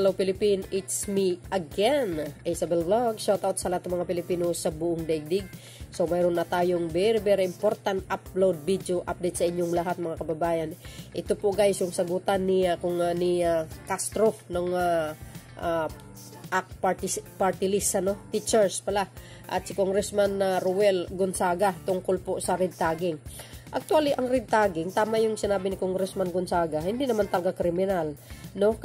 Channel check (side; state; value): both; identical; correlation 1.00